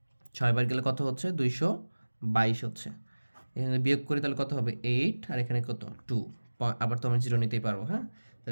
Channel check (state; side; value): inverted; both; correlation -1.00